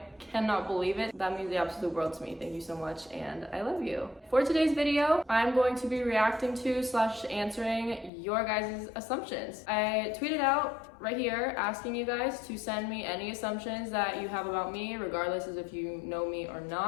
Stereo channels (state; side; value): drops out; right; at 8.1 s